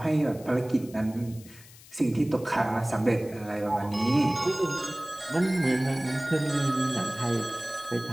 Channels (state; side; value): noise; left; hiss, 21 dB below the sound